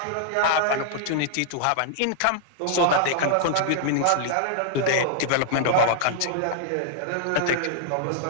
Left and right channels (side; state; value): both; different; correlation -0.01